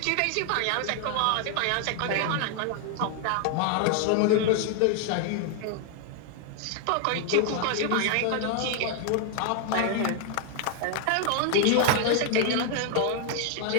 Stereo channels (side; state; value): both; different; correlation 0.00